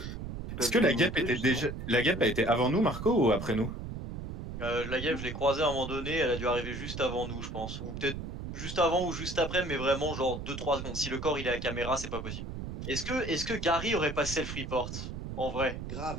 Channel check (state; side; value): noise; right; rumble, 7 dB below the sound